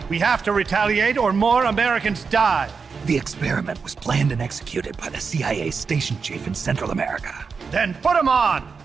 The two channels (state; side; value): quieter; left; 5.3 dB